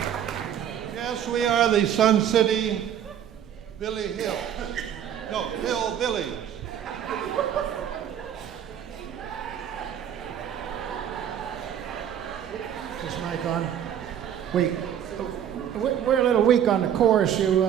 Yes, we are the Sun City Billy Hill. No, Hillbillies. Is this mic on? We're a little weak on the chorus.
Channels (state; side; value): quieter; left; 9.7 dB